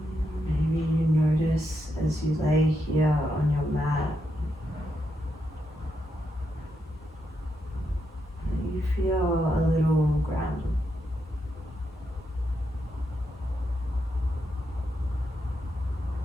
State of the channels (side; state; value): both; normal; correlation 0.82